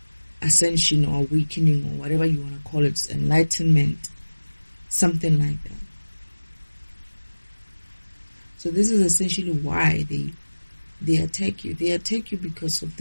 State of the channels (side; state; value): both; inverted; correlation -1.00